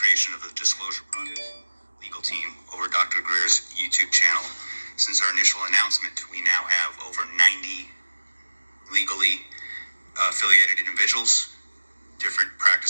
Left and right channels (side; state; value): both; inverted; correlation -1.00